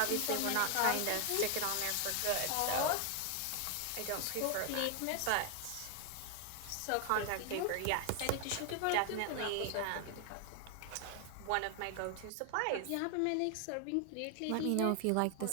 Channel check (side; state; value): both; different; correlation 0.01